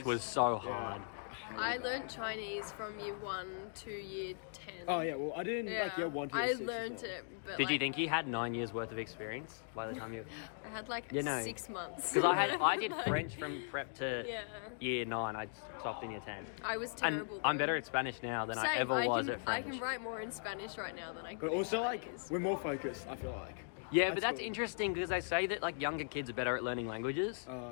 it's- was so yeah. hard. I learnt Chinese from year 1 to year 10. Oh yeah, well I didn't Yeah. like year 1 to year I 6 as learnt well. it, but Did like, you think you had 9 years worth of experience by the time you? I had like You know, 6 months. Because I did Like, French from prep to Yeah. year 9. I stopped in year 10. I was And terrible. I'm though. better at Spanish now than I Same. ever was can, at French. I can write more in Spanish right now than I could But also in like Chinese. we're more focused, I feel like. Yeah, but That's that's cool. interesting because they say that like younger kids are better at learning languages.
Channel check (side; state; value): right; silent; digital silence